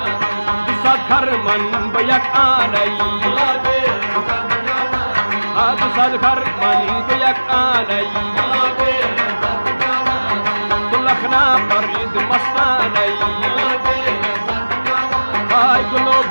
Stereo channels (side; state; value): both; inverted; correlation -1.00